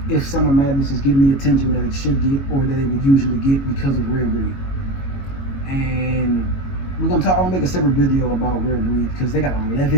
if Summer Madness is getting the attention that it should get or that it would usually get because of Rare Breed. And I'm gonna make a separate video about Rare Breed because they got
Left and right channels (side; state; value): right; late; 22 ms